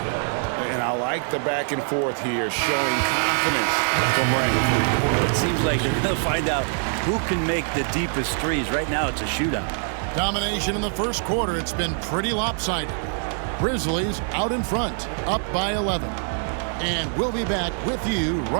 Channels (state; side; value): silent; left; 56 dB below the other